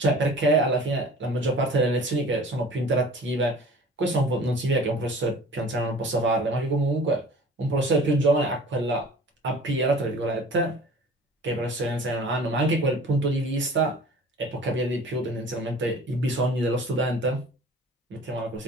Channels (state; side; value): normal; both; correlation 0.45